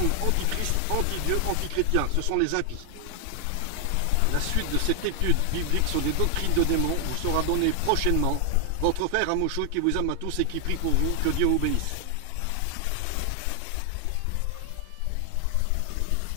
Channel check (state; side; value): different; both; correlation 0.00